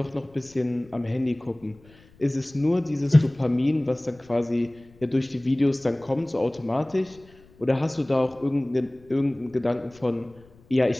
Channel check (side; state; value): left; noise; rumble, 26 dB below the sound